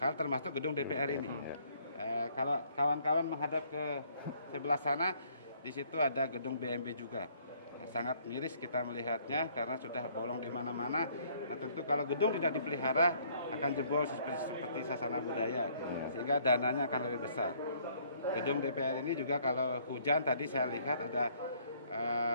termasuk gedung DPR ini. Kalau kawan-kawan menghadap ke sebelah sana, di situ ada gedung BMB juga. Sangat miris kita melihatnya karena sudah bolong di mana-mana. Nah tentu kalau gedung tidak dipelihara akan jebol seperti sasana budaya, sehingga dananya akan lebih besar. Gedung DPR ini juga kalau hujan tadi saya lihat ada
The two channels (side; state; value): both; inverted; correlation -0.63